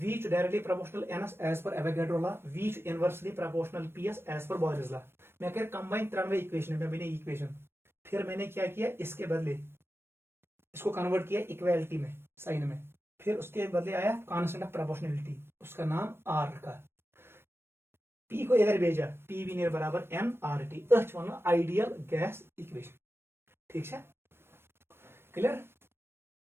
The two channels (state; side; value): late; left; 0.12 ms